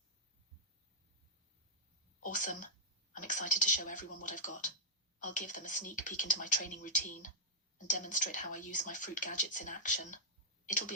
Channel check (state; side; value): normal; both; correlation -0.09